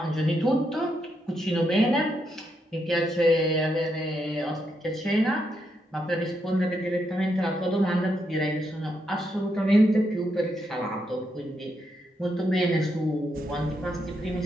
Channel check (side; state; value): both; normal; correlation 0.80